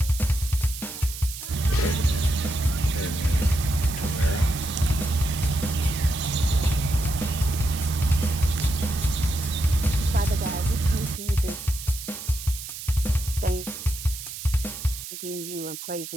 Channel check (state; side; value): noise; right; hiss, 10 dB below the sound